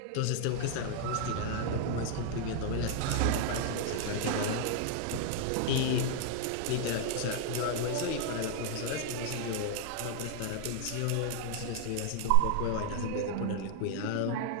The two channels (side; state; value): both; different; correlation 0.00